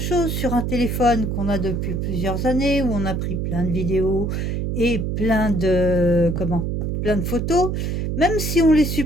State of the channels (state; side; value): noise; right; hum, 1 dB below the sound